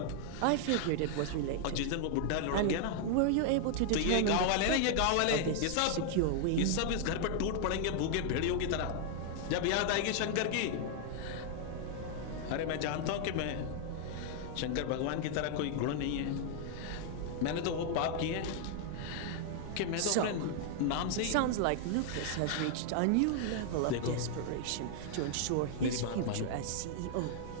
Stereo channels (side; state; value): both; different; correlation -0.01